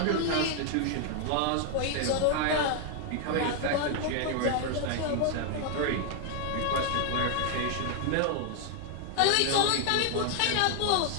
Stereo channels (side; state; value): both; different; correlation 0.00